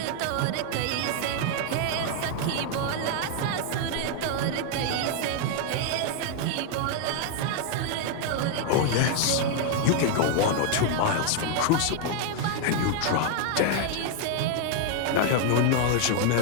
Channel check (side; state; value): both; different; correlation 0.00